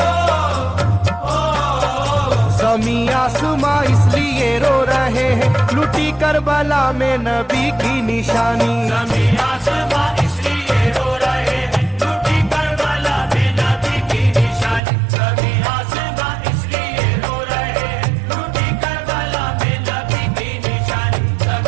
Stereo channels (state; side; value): drops out; left; at 14.8 s